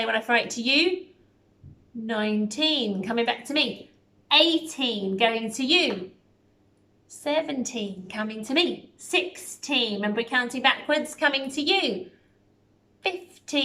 when I throw it to you, 19, coming back to me. 18, going to you. 17, coming to me. 16, remember we're counting backwards, coming to you.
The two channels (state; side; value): identical; both; correlation 1.00